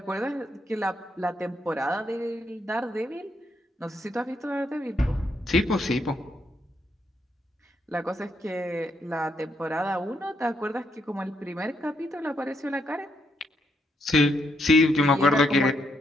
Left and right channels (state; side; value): normal; both; correlation 0.77